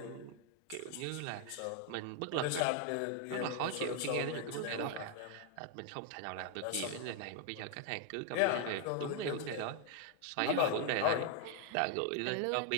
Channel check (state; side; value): different; both; correlation 0.00